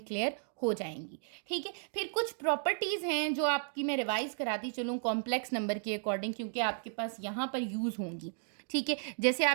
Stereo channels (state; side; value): silent; left; 55 dB below the other